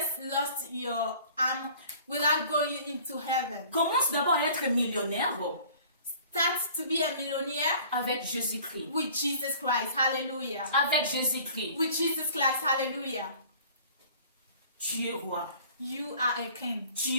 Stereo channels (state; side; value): inverted; both; correlation -0.49